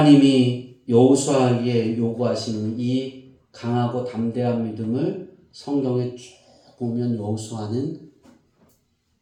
여호수아에게 요구하시는 이 강하고 담대한 믿음을 성경에 쭉 보면 여호수아는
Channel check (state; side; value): identical; both; correlation 1.00